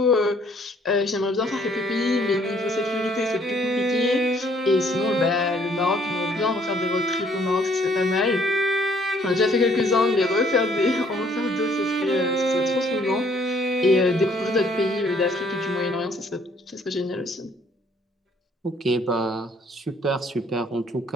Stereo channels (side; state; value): both; normal; correlation 0.63